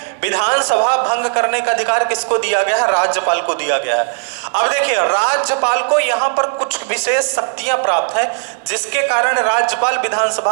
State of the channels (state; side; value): silent; left; 64 dB below the other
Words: विधानसभा भंग करने का अधिकार किसको दिया गया है? राज्यपाल को दिया गया है। अब देखिए, राज्यपाल को यहां पर कुछ विशेष शक्तियां प्राप्त है, जिसके कारण राज्यपाल